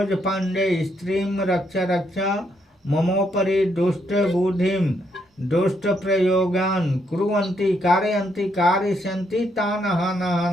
पांडे स्त्रीं रक्ष रक्षा ममोपरि दुष्ट बुद्धिं दुष्ट प्रयोगान् कुर्वन्ति कारयन्ति कारयिष्यन्ति तान् हन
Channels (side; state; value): both; normal; correlation 0.75